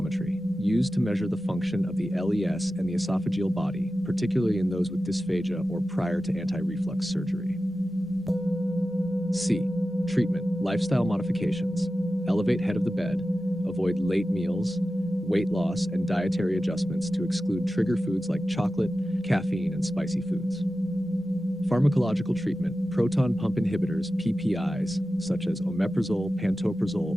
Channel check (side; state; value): both; normal; correlation 0.94